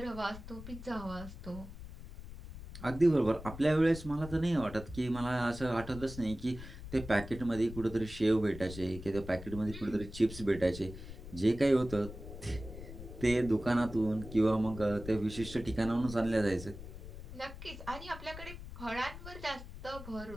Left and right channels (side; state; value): left; noise; rumble, 12 dB below the sound